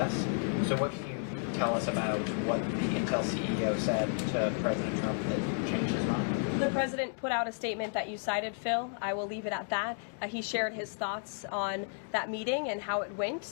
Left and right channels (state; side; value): silent; right; 56 dB below the other